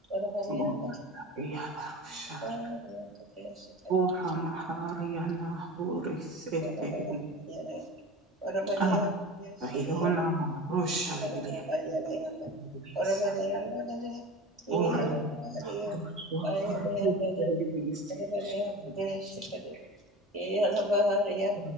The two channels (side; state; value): both; normal; correlation 0.33